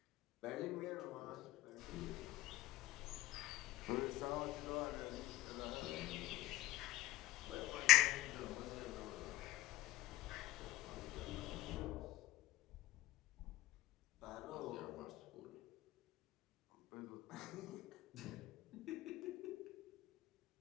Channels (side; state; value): right; quieter; 17.1 dB